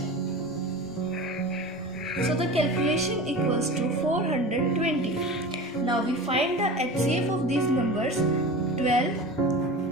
so the calculation equals to 420. Now we find the HCF of these numbers. 12,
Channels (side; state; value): both; normal; correlation 0.32